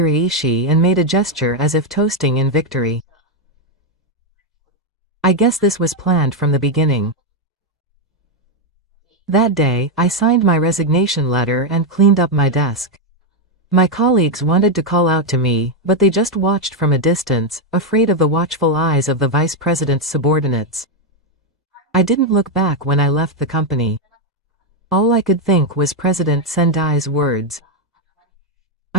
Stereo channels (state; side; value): normal; both; correlation 0.03